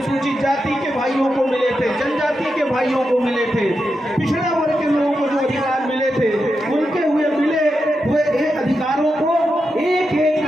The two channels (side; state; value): both; normal; correlation 0.87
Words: जाति के भाइयों को मिले थे, जनजाति के भाइयों को मिले थे, पिछड़े वर्ग के लोगों को जो अधिकार मिले थे, उनके मिले हुए अधिकारों को एक एक